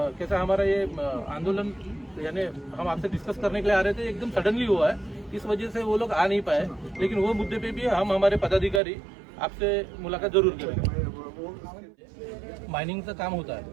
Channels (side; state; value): left; drops out; at 8.8 s